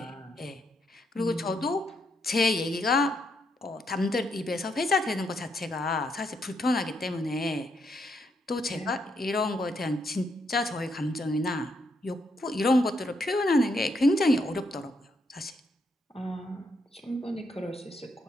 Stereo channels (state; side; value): normal; both; correlation 0.77